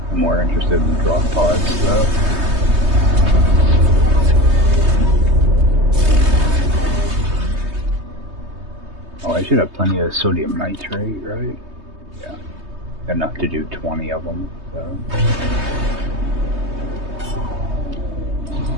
I'm more interested in drop pods, though. Oh, I should have plenty of sodium nitrate, right? Yeah. Enough to do 20 of them, so...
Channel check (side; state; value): left; late; 3.2 ms